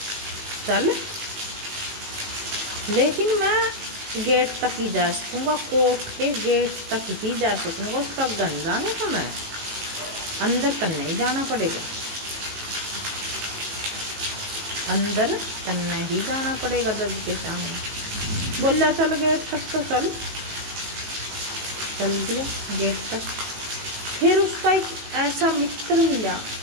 चल, लेकिन मैं गेट तक ही जा सकूँगा, कोर्ट के गेट तक ही जा सकूँगा, उसका गन जाने का मैं अंदर तक नहीं जाना पड़ेगा, अंदर तक नहीं जाना पड़ेगा जज के सामने। बोला चल गेट तक, तो चल दिया गेट तक। फिर उसका एक ऐसा मित्र मिला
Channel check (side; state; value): left; late; 18 ms